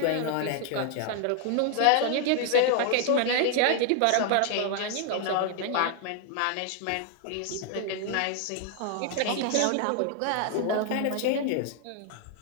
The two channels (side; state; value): both; different; correlation 0.00